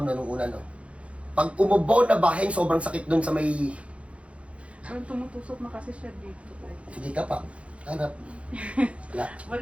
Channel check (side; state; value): left; late; 0.062 ms